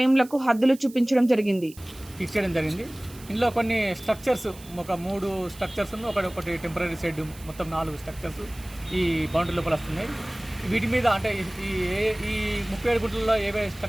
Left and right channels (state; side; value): noise; right; hiss, 20 dB below the sound